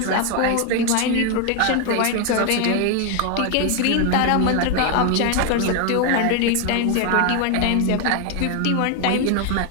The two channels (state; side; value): different; both; correlation 0.01